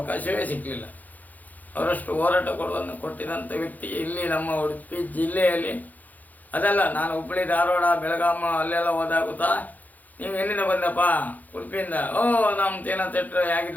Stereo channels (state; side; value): late; right; 0.081 ms